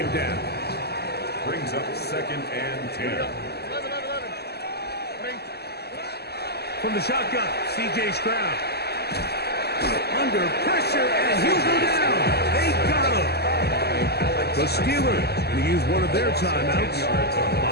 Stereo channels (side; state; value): right; late; 0.47 ms